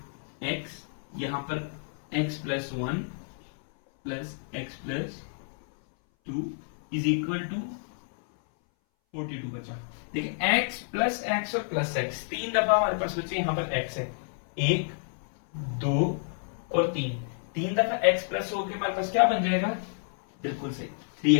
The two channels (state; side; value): silent; right; 58 dB below the other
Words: x, यहाँ पर x plus 1 plus x plus 2 is equal to 42 बचा। देखिए x प्लस x और प्लस x तीन दफा हमारे पास बचे, यहाँ पर x है 1 2 और 3, तीन दफा x प्लस होके हमारे पास क्या बन जाएगा, बिल्कुल सही